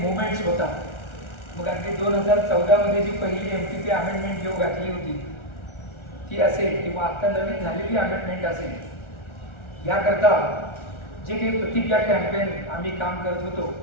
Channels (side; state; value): right; late; 1.4 ms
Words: होतात मग अगदी 2014मध्ये जी पहिली MTP अमेंडमेंट जेव्हा घातली होती ती असेल किंवा आता नवीन झालेली अमेंडमेंट असेल, याकरता जे काही प्रतिज्ञा कॅम्पेन आम्ही काम करत होतो